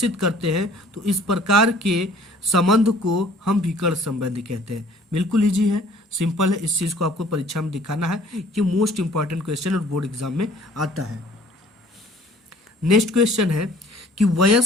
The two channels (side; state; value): both; normal; correlation 0.54